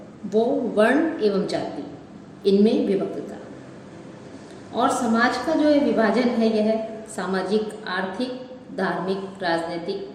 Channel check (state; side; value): identical; both; correlation 1.00